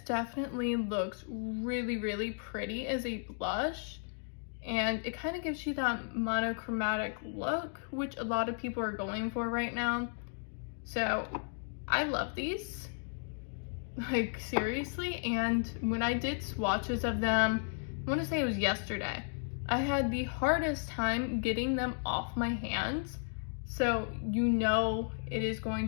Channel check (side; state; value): right; silent; 55 dB below the other